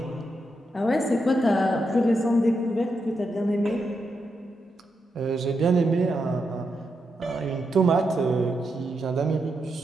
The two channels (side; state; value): both; normal; correlation 0.84